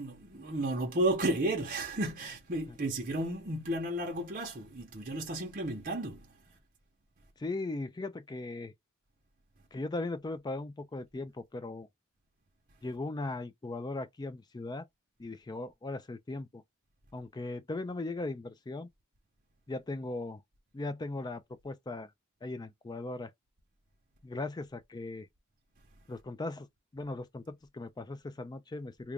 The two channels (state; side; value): normal; both; correlation 0.44